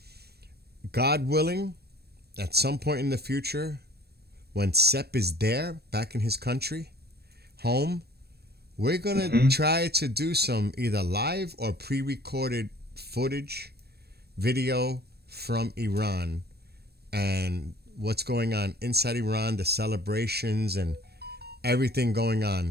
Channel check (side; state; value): left; late; 0.47 ms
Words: God willing, at some point in the future, when Sepp is there, back in his country, home, we're going to try to do some either live or pre-recorded footage, video from Iran, and what's going on inside Iran, the celebrations and everything going